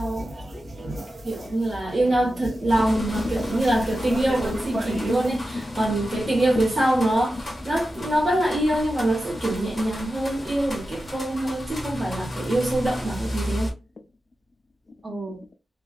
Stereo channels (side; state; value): both; normal; correlation 0.92